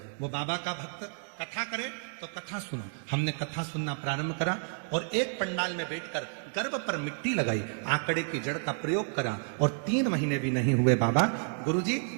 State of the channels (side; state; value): left; silent; 57 dB below the other